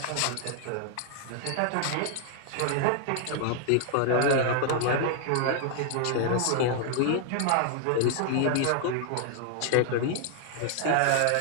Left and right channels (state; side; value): different; both; correlation 0.00